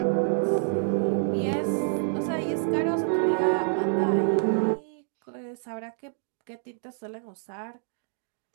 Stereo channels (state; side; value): silent; left; digital silence